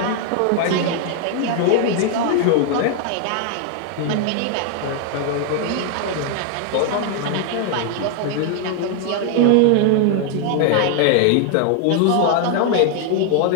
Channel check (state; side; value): different; both; correlation 0.00